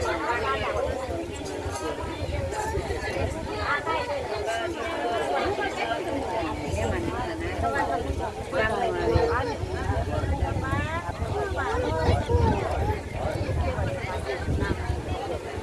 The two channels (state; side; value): identical; both; correlation 1.00